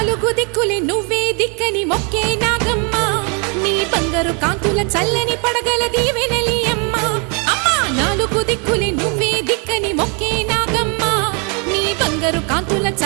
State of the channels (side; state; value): left; quieter; 35.0 dB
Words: నాలుగు దిక్కులే నువ్వే దిక్కని మొక్కే నాగమ్మ నీ బంగారు కాంతుల చల్లని పడగల దీవెనలి అమ్మ అమ్మా నాలుగు దిక్కులే నువ్వే దిక్కని మొక్కే నాగమ్మ నీ బంగారు కాంతుల